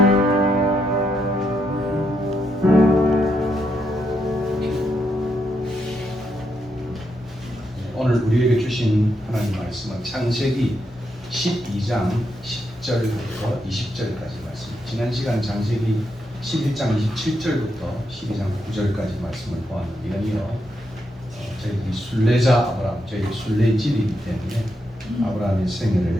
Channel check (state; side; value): normal; both; correlation 0.81